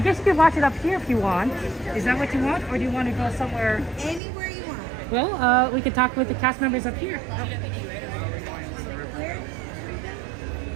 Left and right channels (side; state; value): left; drops out; at 4.2 s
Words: guess you can watch it up here if you want. Is that what you want, or do you want to go somewhere? Anywhere you want. Well, we can talk with the cast members up here. Oh.